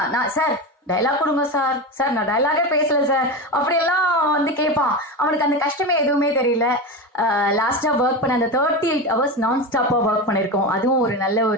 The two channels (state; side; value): normal; both; correlation 0.21